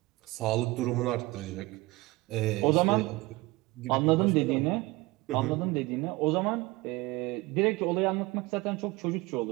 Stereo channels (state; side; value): quieter; left; 21.6 dB